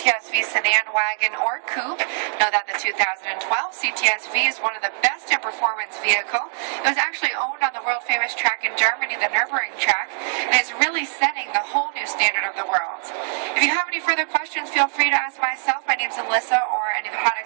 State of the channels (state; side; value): silent; left; digital silence